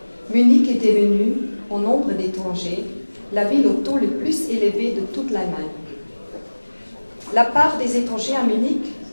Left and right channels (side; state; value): both; inverted; correlation -1.00